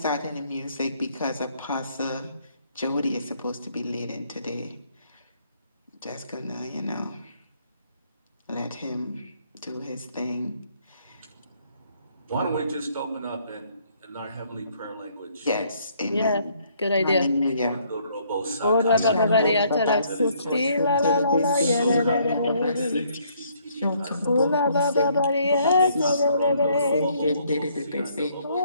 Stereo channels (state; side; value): inverted; both; correlation -0.66